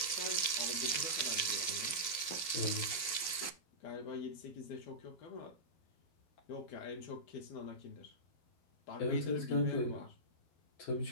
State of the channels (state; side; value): late; right; 12 ms